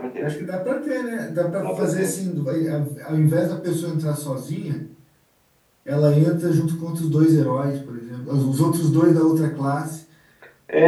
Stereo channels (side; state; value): both; identical; correlation 1.00